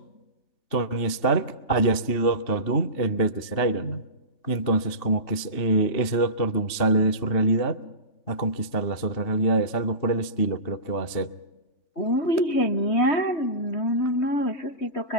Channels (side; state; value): right; late; 2.8 ms